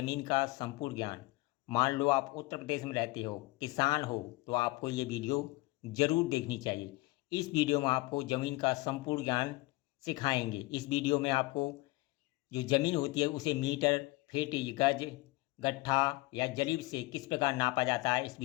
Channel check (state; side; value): quieter; right; 21.2 dB